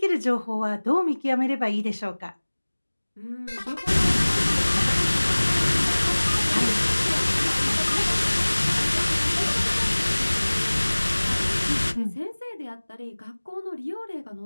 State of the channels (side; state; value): both; inverted; correlation -1.00